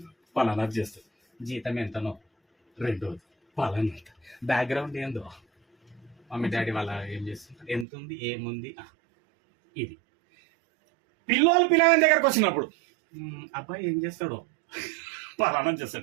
పలానా చేస్తుంది. జీతం ఎంతనో? 2 పలానా. బ్యాక్గ్రౌండ్ ఏందో, మమ్మీ డాడీ వాళ్ళ ఏం చేస్తుంటారు, ఎంత ఉంది, ఏముంది, ఇది. పిల్లగాని దగ్గరకు వచ్చినప్పుడు అబ్బాయి ఏం చేస్తాడో, పలానా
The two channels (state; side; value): drops out; left; at 7.9 s